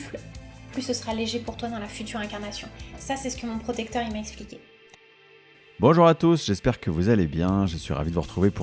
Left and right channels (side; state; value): both; identical; correlation 1.00